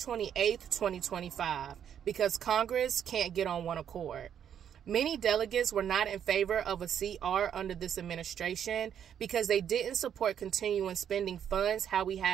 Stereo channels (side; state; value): left; quieter; 9.0 dB